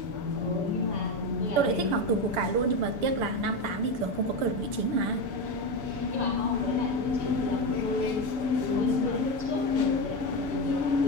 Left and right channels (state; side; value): late; left; 6.9 ms